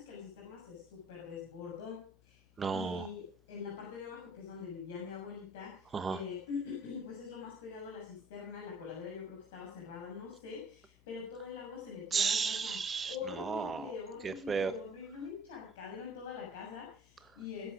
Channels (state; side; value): noise; left; hum, 26 dB below the sound